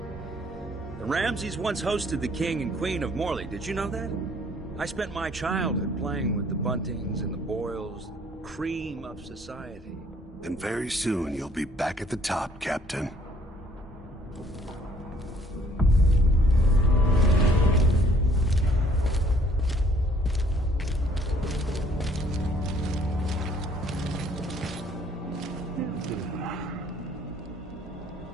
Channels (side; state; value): both; normal; correlation 0.60